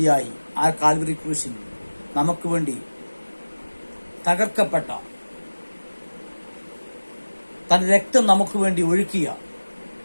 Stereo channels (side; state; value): both; inverted; correlation -1.00